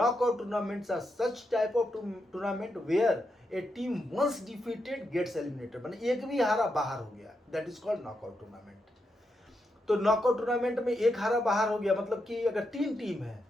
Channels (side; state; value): both; normal; correlation 0.84